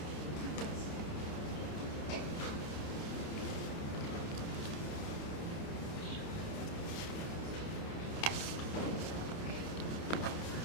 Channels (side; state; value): right; late; 28 ms